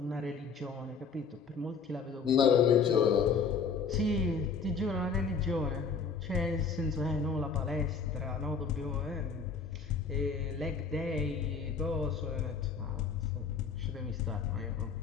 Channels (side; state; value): right; quieter; 5.5 dB